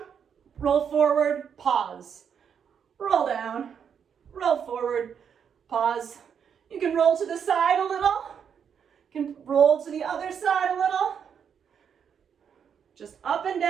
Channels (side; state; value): left; quieter; 7.5 dB